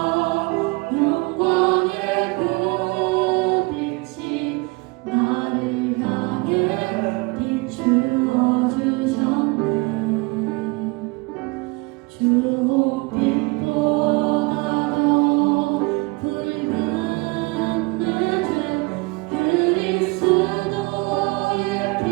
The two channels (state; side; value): quieter; left; 26.5 dB